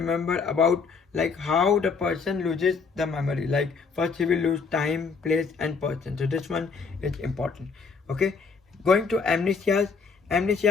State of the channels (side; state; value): right; quieter; 5.1 dB